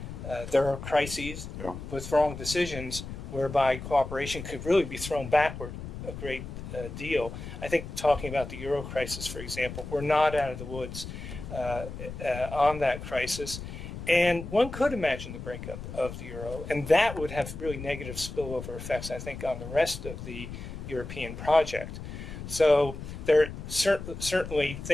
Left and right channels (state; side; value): noise; left; rumble, 9 dB below the sound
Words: there are crises with wrong decisions whereby cooperation could really be thrown backward a great deal. I think talking about the euro crisis, for example, we're not out of the woods on that crisis. And one could imagine the breakup of the euro, and that would have really negative spillover effects, I think, on the rest of the European project. So there certainly